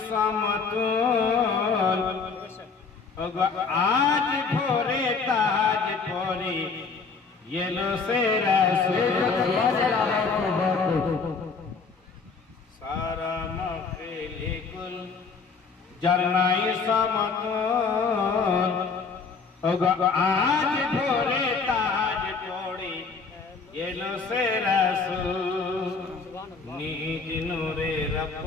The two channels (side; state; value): right; quieter; 4.9 dB